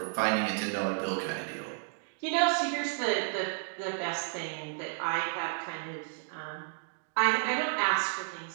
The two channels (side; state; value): left; silent; digital silence